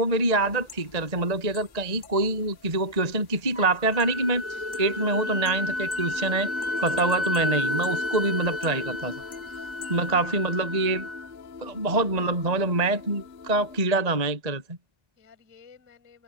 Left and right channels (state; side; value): late; left; 1.1 ms